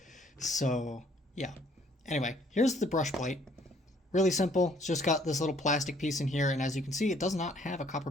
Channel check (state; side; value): normal; both; correlation 0.62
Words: So yeah. Anyway, here's the brush plate. Really simple. It's just got this little plastic piece in here, and as you can see, it does not have a